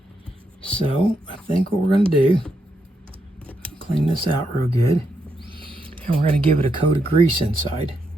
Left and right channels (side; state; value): both; normal; correlation 0.81